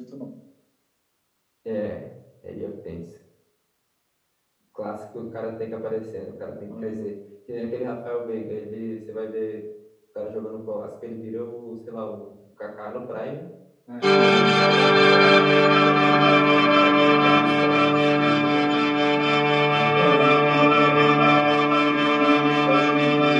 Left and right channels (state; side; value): identical; both; correlation 1.00